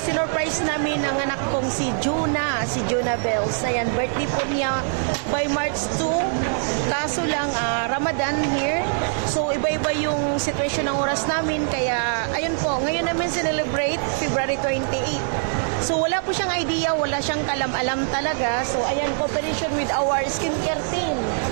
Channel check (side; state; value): left; silent; digital silence